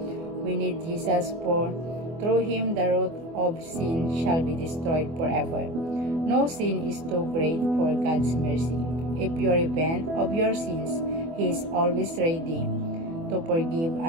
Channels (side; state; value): left; late; 24 ms